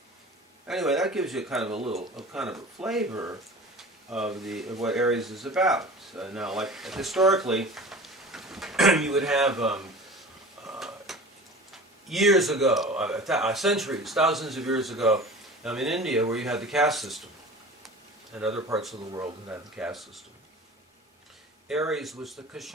Anyway, that gives you kind of a flavor of what Aries is about. Now, like historically, you would have years ago, centuries, thousands of years ago, in India, where you had the caste system, and other parts of the world that had the caste system. Aries was the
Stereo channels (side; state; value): both; normal; correlation 0.39